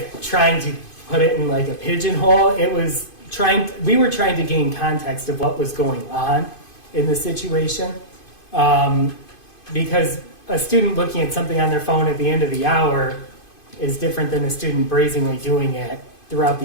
trying to put it in like a pigeonhole. We were trying to gain context of what was going on in the situation. Because a student looking at something on their phone at the end of the hour is different than a student brazenly doing it throughout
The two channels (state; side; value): late; right; 2.5 ms